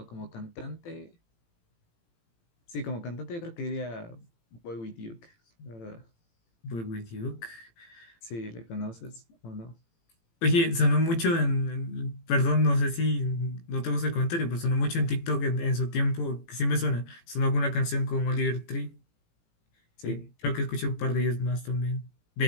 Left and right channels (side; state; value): right; late; 18 ms